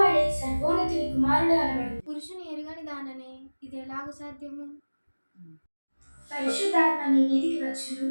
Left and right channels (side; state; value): both; inverted; correlation -1.00